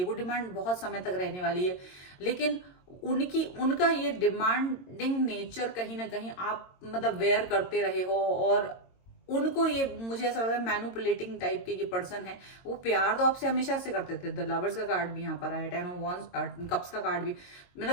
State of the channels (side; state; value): right; late; 22 ms